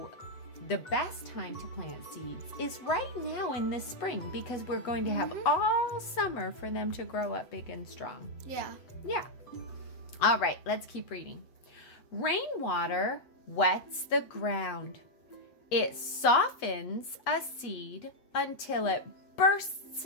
the best time to plant seeds is right now in the spring because we're going to have all summer for them to grow up big and strong. Yeah. Yeah. All right, let's keep reading. Rainwater wets the ground. It softens a seed until it bursts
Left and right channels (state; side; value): late; right; 8.1 ms